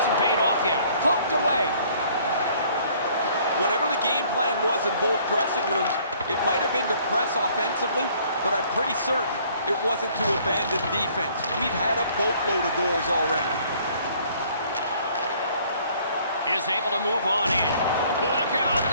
paid off yet. Poked away. Whatever the game plan was in both dressing rooms, it might have been to press offensively, but I'm pretty certain it wasn't to abandon defense. We've had a boatload of goals already. Is able to move on in. Look out,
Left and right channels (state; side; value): inverted; both; correlation -0.58